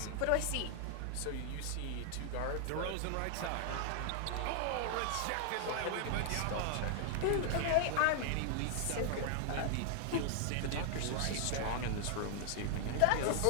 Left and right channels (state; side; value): different; both; correlation 0.00